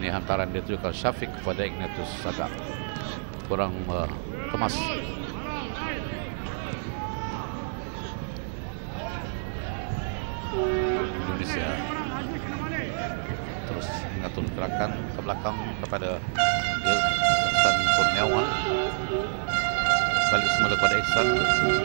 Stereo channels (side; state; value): left; silent; digital silence